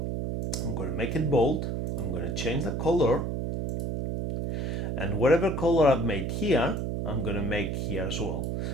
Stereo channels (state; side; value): noise; right; hum, 2 dB below the sound